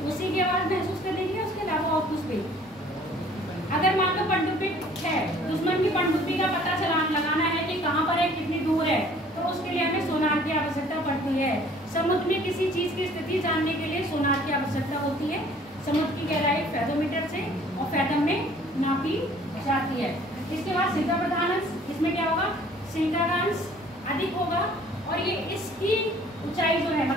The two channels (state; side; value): normal; both; correlation 0.54